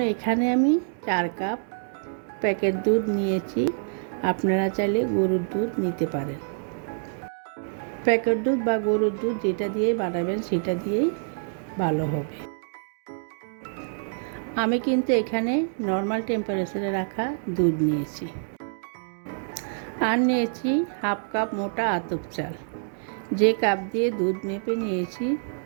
এখানে আমি 4 কাপ প্যাকেট দুধ নিয়েছি। আপনারা চাইলে গরুর দুধ নিতে পারেন। প্যাকেট দুধ বা গরুর দুধ যেটা দিয়ে বানাবেন সেটা দিয়েই ভালো হবে। আমি কিন্তু এখানে নর্মাল টেম্পারেচারে রাখা দুধ নিয়েছি। আর নিয়েছি হাফ কাপ মোটা আতপ চাল। যে কাপ দিয়ে দুধ মেপে নিয়েছি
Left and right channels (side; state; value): left; silent; digital silence